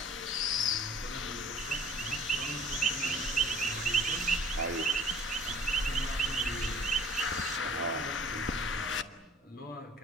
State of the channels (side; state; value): both; normal; correlation 0.50